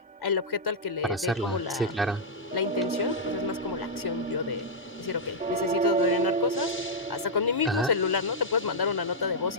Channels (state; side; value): normal; both; correlation -0.07